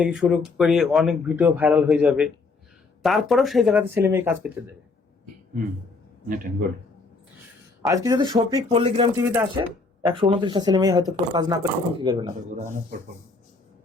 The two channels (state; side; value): quieter; right; 3.9 dB